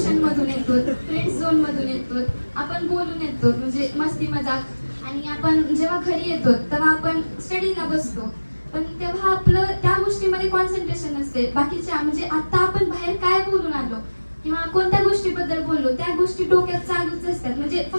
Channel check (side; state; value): both; inverted; correlation -1.00